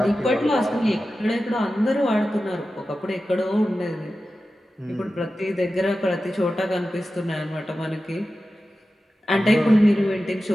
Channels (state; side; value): normal; both; correlation 0.93